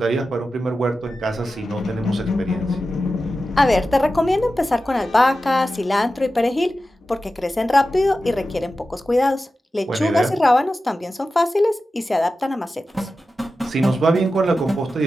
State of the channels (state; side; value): normal; both; correlation 0.93